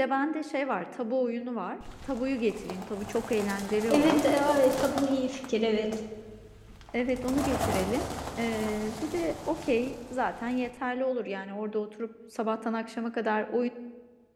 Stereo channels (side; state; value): both; identical; correlation 1.00